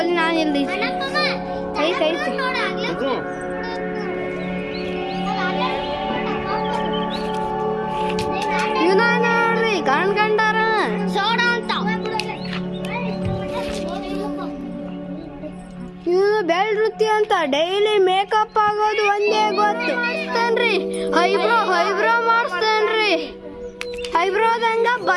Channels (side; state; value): both; identical; correlation 1.00